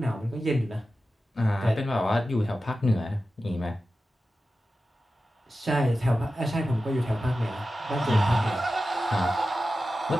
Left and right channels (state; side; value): normal; both; correlation 0.93